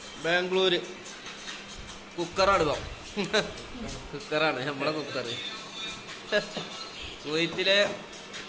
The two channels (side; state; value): both; identical; correlation 1.00